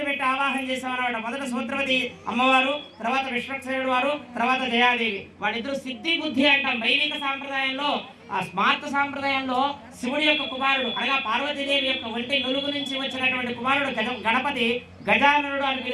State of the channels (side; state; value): both; identical; correlation 1.00